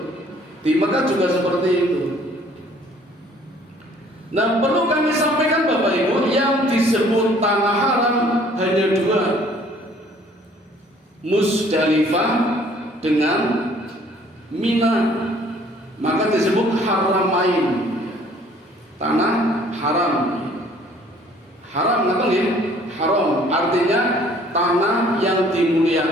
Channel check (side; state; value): both; normal; correlation 0.57